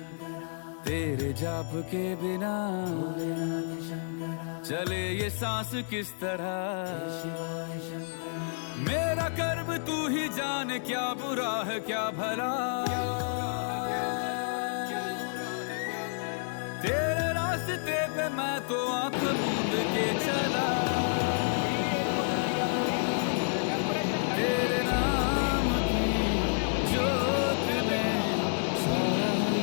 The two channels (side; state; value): right; silent; 58 dB below the other